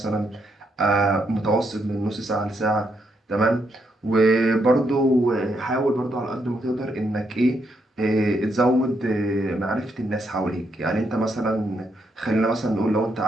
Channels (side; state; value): both; normal; correlation 0.78